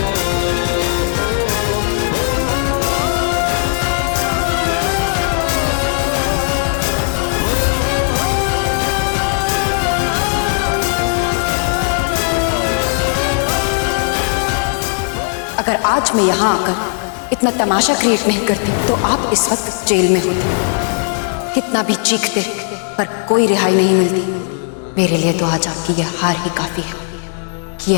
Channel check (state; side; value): silent; right; digital silence